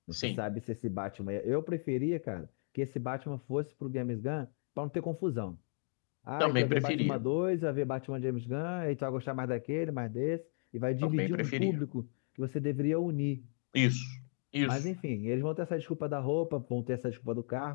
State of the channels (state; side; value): silent; right; 54 dB below the other